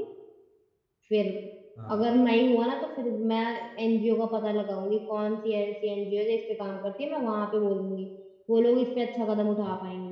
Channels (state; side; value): identical; both; correlation 1.00